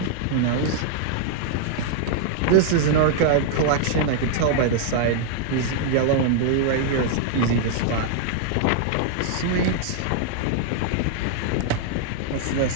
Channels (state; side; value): different; both; correlation -0.01